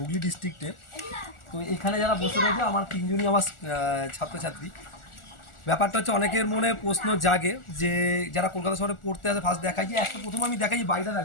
ডিস্ট্রিক্টে। তো এখানে যারা বসে রয়েছে আমার তিনজনই আমার ছাত্রছাত্রী। ব্যাপারটা হচ্ছে অনেকের মনে প্রশ্ন জাগে যে যারা কলকাতা শহরে পড়তে আসে ফার্স্ট দেখায় যে একটা প্রথম আমি দেখাই বাড়িটা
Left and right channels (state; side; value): late; right; 1.4 ms